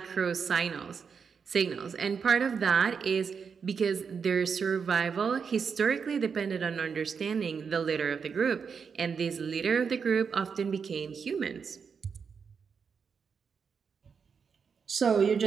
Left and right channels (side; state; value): left; quieter; 6.1 dB